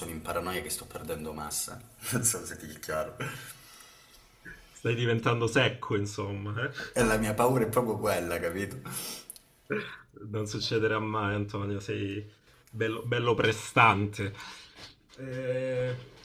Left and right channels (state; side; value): identical; both; correlation 1.00